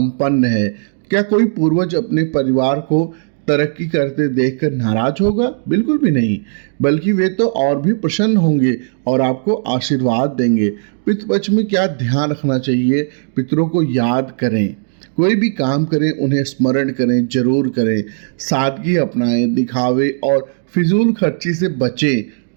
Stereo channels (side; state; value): left; silent; 67 dB below the other